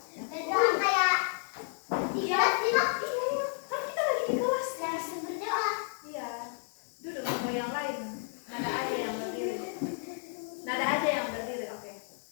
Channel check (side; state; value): right; silent; 57 dB below the other